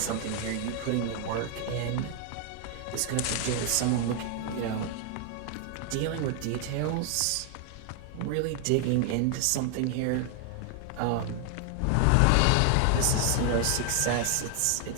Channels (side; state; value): both; different; correlation 0.00